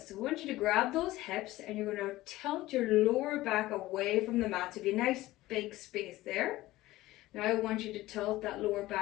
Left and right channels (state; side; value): quieter; right; 17.3 dB